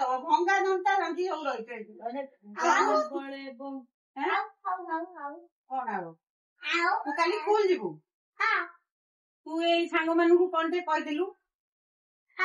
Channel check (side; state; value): both; identical; correlation 1.00